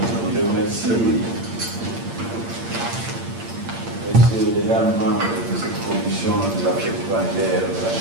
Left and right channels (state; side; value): late; left; 8.7 ms